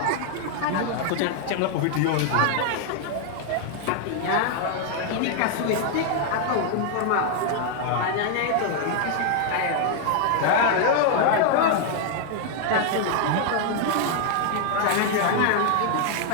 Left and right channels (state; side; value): different; both; correlation 0.00